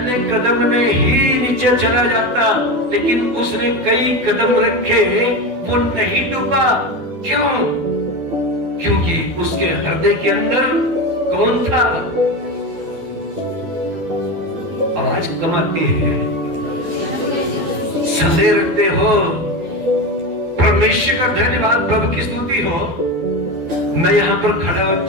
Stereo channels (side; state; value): left; late; 12 ms